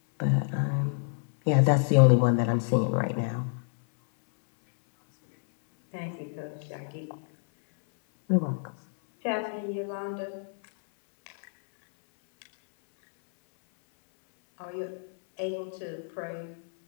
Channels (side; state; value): right; silent; 60 dB below the other